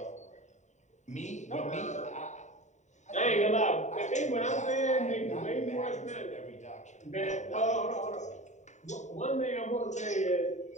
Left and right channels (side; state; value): right; late; 0.34 ms